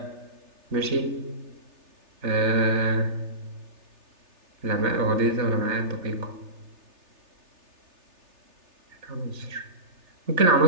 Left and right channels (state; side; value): late; left; 3.3 ms